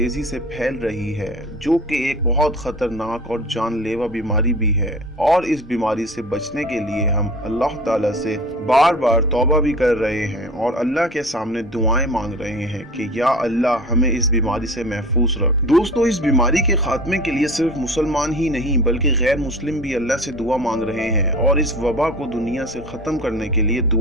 से फैल रही है, जो कि एक बहुत ख़तरनाक और जानलेवा बीमारी भी है। और इस बीमारी से बचने के लिए हम अल्लाह ताला से बार-बार तौबा भी कर रहे हैं और अल्लाह के सामने दुआएं मांग रहे हैं कि या अल्लाह हमें इस बीमारी से महफूज रख। दोस्तों, इस बीमारी के खात्मे के लिए सिर्फ मुसलमान ही नहीं बल्कि गैर मुस्लिम भी अल्लाह से दुआ मांग रहे हैं और इस वबा को दुनिया से ख़त्म करने के लिए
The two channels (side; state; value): both; normal; correlation 0.38